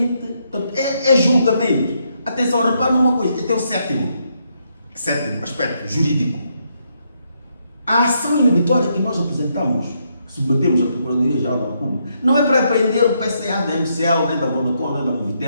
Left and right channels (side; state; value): both; inverted; correlation -0.77